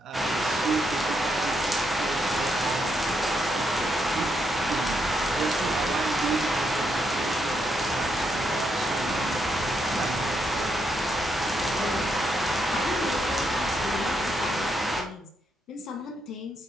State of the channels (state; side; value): normal; both; correlation 0.79